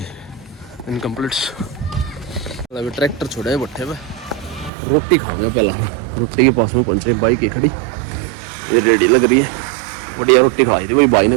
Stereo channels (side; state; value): left; drops out; at 4.7 s